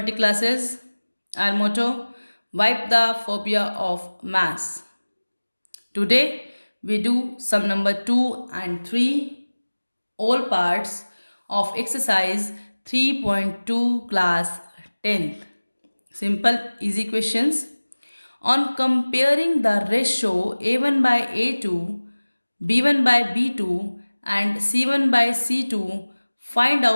classes. Our motto, wipe the phobia of maths. Today we do sum number 2 and 3, all parts of exercise 3.2 class 10th. Simple easy questions. On comparing the ratio A1 by A2, B1 by B2 and C1 by C2, find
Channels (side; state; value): both; inverted; correlation -1.00